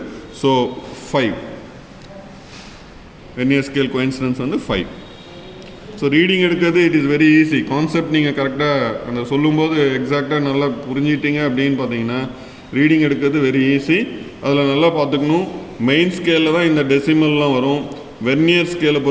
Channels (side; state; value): both; identical; correlation 1.00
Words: ஸோ 5. வெர்னியர் ஸ்கேல் கோயின்சிடென்ஸ் வந்து 5. ஸோ ரீடிங் எடுக்கிறது it is very easy. Concept நீங்கள் கரெக்டாக அந்த சொல்லும்போது எக்ஸாக்டாக நல்லா புரிஞ்சிட்டீங்க அப்படின்னு பார்த்தீங்கன்னா ரீடிங் எடுக்கிறது வெரி ஈஸி. அதில் நல்லா பார்த்துக்கணும், மெயின் ஸ்கேலில் தான் இந்த டெசிமல்லாம் வரும். வெர்னியர் ஸ்கேலை